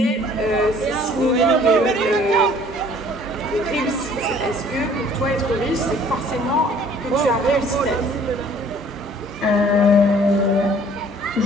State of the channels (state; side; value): normal; both; correlation 0.55